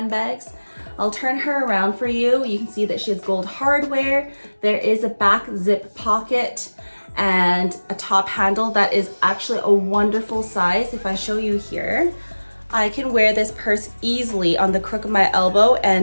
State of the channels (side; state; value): both; inverted; correlation -1.00